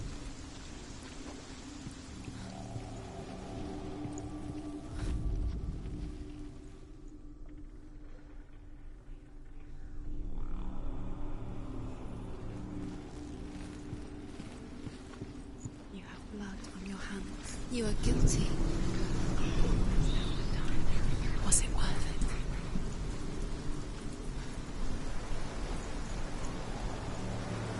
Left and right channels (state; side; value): identical; both; correlation 1.00